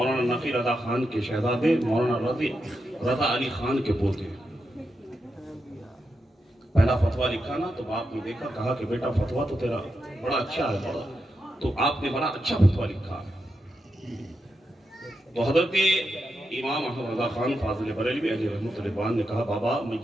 نفی رضا خان کے شہزادے مولانا رضا علی خان کے پوتے, پہلا فتویٰ لکھا نا تو باپ نے دیکھا, کہا کہ بیٹا فتویٰ تو تیرا بڑا اچھا ہے, بڑا تو آپ نے بڑا اچھا فتویٰ لکھا ہے. تو حضرت امام احمد رضا خان فاضل بریلوی علیہ رحمۃ اللہ نے کہا بابا میں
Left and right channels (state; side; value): normal; both; correlation 0.86